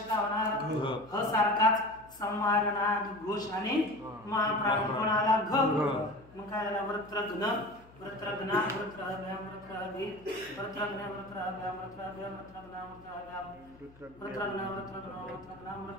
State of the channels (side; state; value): left; noise; hum, 24 dB below the sound